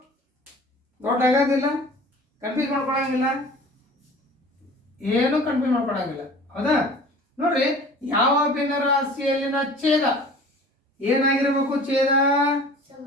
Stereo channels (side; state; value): both; normal; correlation 0.44